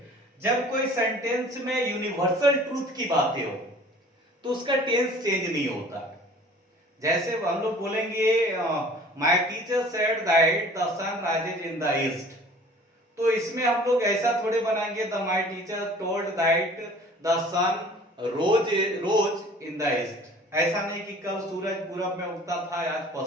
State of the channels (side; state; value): both; normal; correlation 0.48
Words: जब कोई सेंटेंस में यूनिवर्सल ट्रूथ की बातें हो तो उसका टेंस चेंज नहीं होता। जैसे हम लोग बोलेंगे my teacher said that the sun rises in the east, तो इसमें हम लोग ऐसा थोड़े बनाएंगे the my teacher told that the sun rose in the east. ऐसा नहीं कि कल सूरज पूरब में उगता था, आज